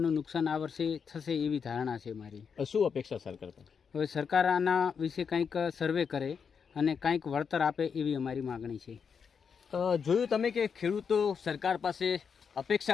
નુકસાન આ વર્ષે થશે એવી ધારણા છે મારી. શું અપેક્ષા સરકાર પર? હવે સરકાર આના વિશે કંઈક સર્વે કરે અને કંઈક વળતર આપે એવી અમારી માગણી છે. જોયું તમે કે ખેડૂતો સરકાર પાસે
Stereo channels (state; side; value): quieter; right; 6.4 dB